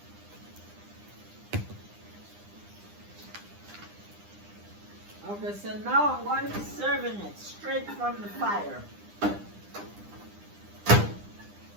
Okay, so now I'm going to be serving it straight from the fire.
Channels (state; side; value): late; left; 9.9 ms